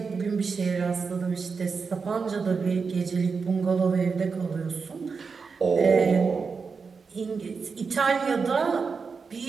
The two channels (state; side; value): quieter; left; 5.1 dB